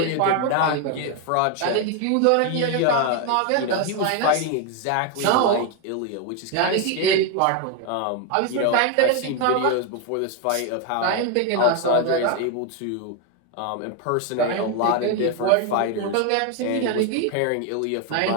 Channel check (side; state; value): both; different; correlation 0.01